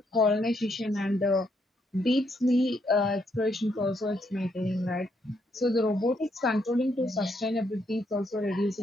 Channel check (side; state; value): both; normal; correlation 0.75